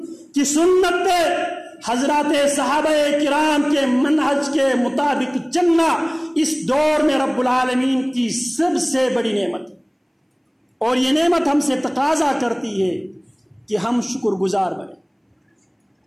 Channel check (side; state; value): both; identical; correlation 1.00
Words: کی سنت پہ حضرات صحابہ کرام کے منہج کے مطابق چلنا اس دور میں رب العالمین کی سب سے بڑی نعمت ہے. اور یہ نعمت ہم سے تقاضا کرتی ہے کہ ہم شکر گزار بنیں،